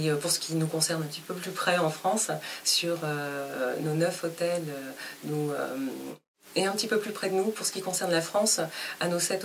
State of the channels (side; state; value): both; identical; correlation 1.00